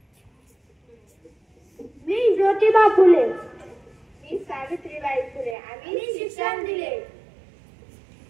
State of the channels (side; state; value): left; drops out; at 5.6 s